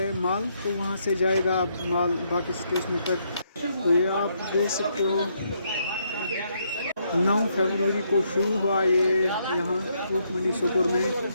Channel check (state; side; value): inverted; both; correlation -0.75